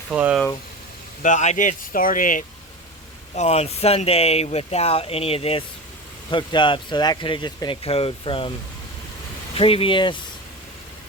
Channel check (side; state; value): both; normal; correlation 0.27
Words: But I did start it on Sunday without any of this hooked up. So that could have just been a code from previous.